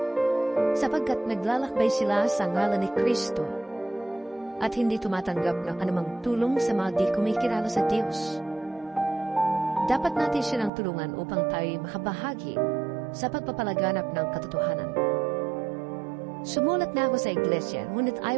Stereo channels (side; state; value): left; drops out; at 10.7 s